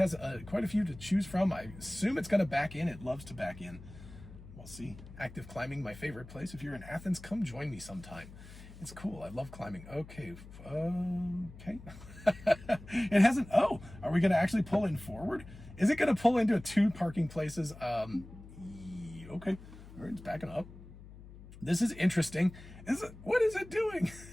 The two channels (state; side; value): noise; left; hum, 17 dB below the sound